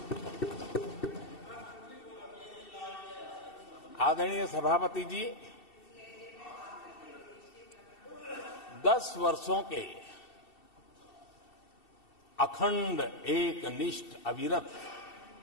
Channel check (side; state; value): right; late; 2.7 ms